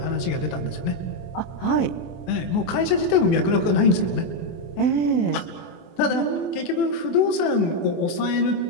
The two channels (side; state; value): right; late; 24 ms